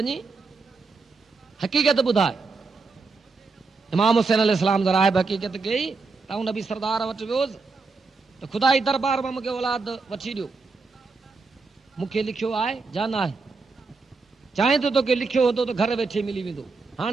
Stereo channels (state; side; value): quieter; left; 4.2 dB